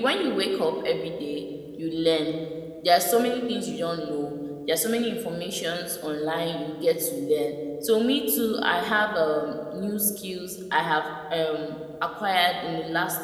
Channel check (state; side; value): identical; both; correlation 1.00